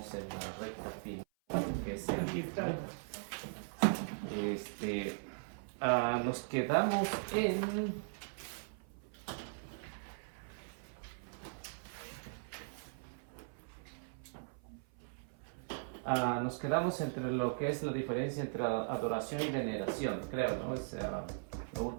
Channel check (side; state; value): left; silent; 52 dB below the other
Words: en la recta final, que es el libro. Nos quedamos en... nos quedamos entre lo que es la diferencia entre adoración y veneración, creo, ¿no? Es lo